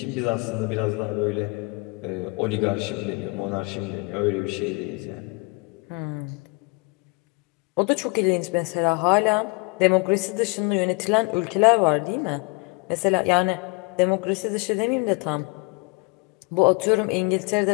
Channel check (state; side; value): quieter; right; 30.0 dB